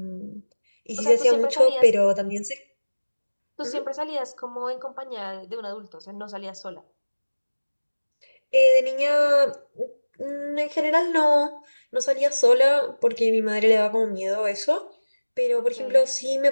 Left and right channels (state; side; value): inverted; both; correlation -1.00